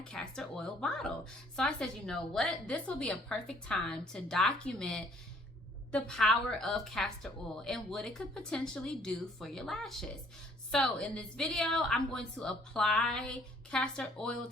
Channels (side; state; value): both; normal; correlation 0.61